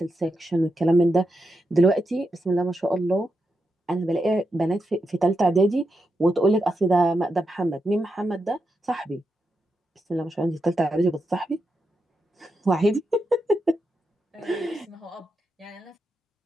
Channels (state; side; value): normal; both; correlation 0.86